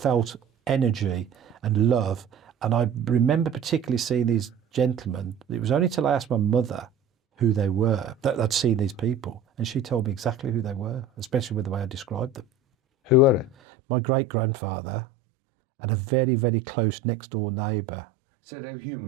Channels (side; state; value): left; drops out; at 13.6 s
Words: energy and love. And I remember particularly seeing these gentlemen. It was only till I asked my mother who they were that I'd seen these people. And she told me exactly who they were, especially with the way I described them. Who were they? My great-grandfather and a very, very close next-door neighbour. So they were